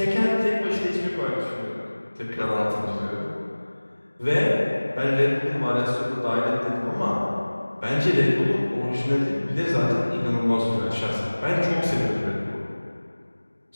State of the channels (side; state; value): both; inverted; correlation -1.00